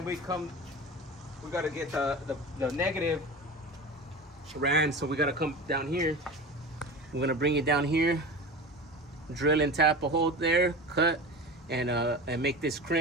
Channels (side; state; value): both; normal; correlation 0.31